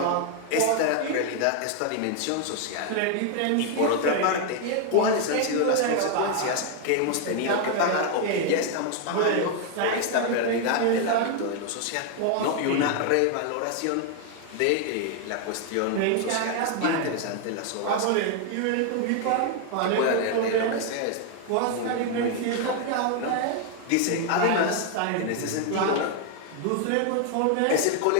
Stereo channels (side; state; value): both; different; correlation 0.00